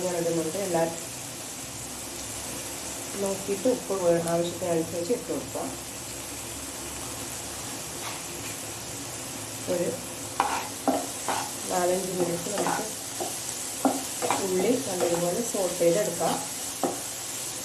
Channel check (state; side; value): identical; both; correlation 1.00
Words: ഞാൻ ഇടുന്നുണ്ട്. എല്ലാവരും നോക്കിയിട്ട് ഉപ്പ് ആവശ്യത്തിനനുസരിച്ച് ഇട്ട് കൊടുക്കാം. ഒരു 4-5 മിനിറ്റ് നമുക്ക് ഉള്ളി നല്ലതുപോലെ സോട്ട് ചെയ്തെടുക്കാം.